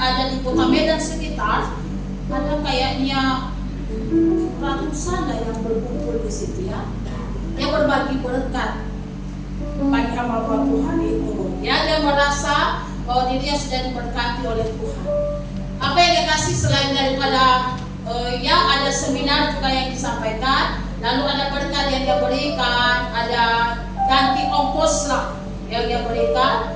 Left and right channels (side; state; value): both; identical; correlation 1.00